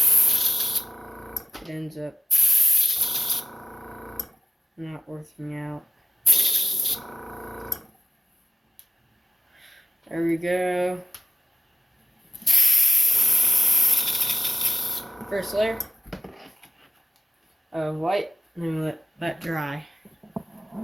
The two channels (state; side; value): normal; both; correlation 0.94